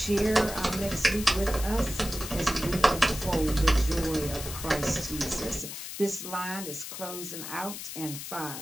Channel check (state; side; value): noise; left; hiss, 8 dB below the sound